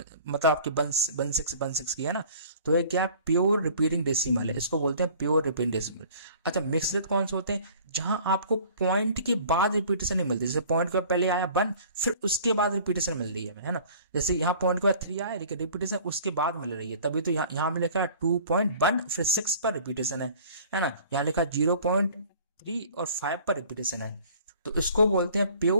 आपके 1.6 की है ना। तो ये क्या है? प्योर रिपीटिंग डेसिमल है, इसको बोलते हैं प्योर रिपीटिंग डेसिमल। अच्छा, मिक्स्ड कौन से होते हैं? जहां आपको पॉइंट के बाद रिपीटेशन नहीं मिलती। जैसे पॉइंट के पहले आया 1, फिर उसके बाद रिपीटेशन मिल रही है ना। जैसे यहाँ पॉइंट के बाद 3 आया, लेकिन रिपीटेशन उसके बाद मिल रही है, तभी तो यहाँ में लिखा है 2.1 फिर 6 पर रिपीटेशन है ना। यहाँ लिखा 0.3 और 5 पर रिपीटेशन है। तो इसको बोलते हैं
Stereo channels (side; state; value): both; inverted; correlation -0.49